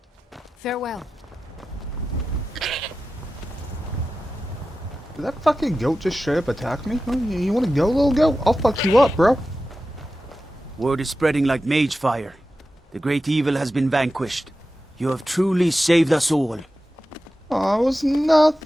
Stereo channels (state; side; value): normal; both; correlation 0.93